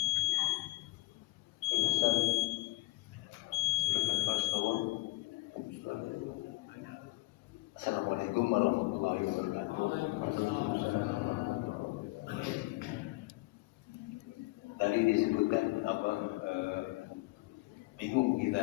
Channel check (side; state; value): right; quieter; 22.8 dB